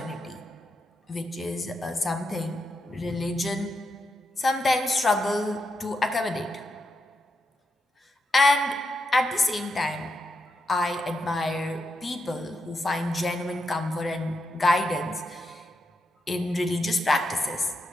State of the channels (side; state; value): both; normal; correlation 0.84